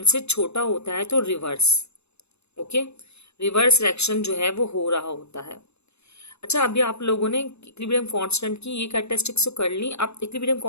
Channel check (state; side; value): late; right; 0.80 ms